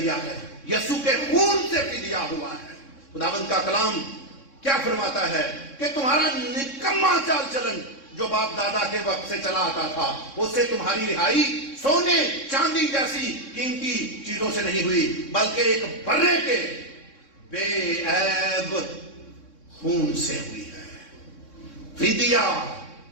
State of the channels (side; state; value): right; late; 3.6 ms